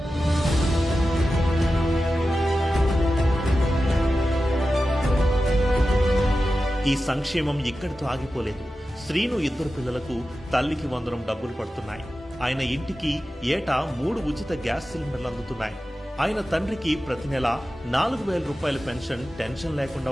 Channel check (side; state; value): both; normal; correlation 0.93